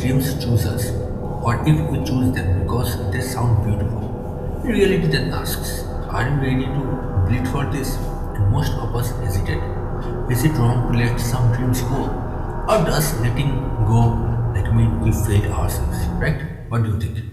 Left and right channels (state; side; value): identical; both; correlation 1.00